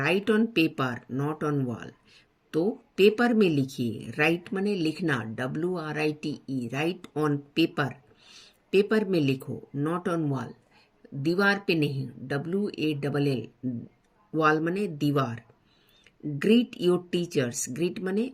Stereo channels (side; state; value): both; identical; correlation 1.00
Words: on paper not on wall, तो पेपर में लिखिए। राइट माने लिखना, WRITE, right on paper, paper में लिखो। नॉट ऑन वॉल, दीवार पे नहीं, WALL, वॉल माने दीवार। ग्रीट योर टीचर्स, ग्रीट माने